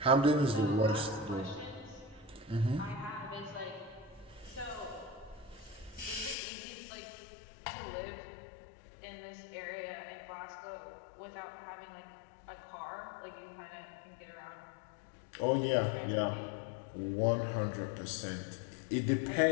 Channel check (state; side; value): drops out; right; at 6.4 s